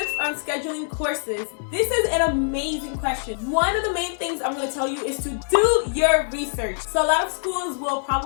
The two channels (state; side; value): silent; right; digital silence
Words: on scheduling courses? This is an amazing question. One of the main things I'm going to tell you is to do your research. So a lot of schools will